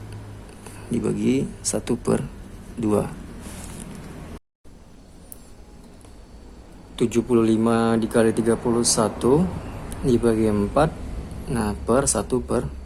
dibagi 1/2. 75 dikali 31 dibagi 4, nah per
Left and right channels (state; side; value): identical; both; correlation 1.00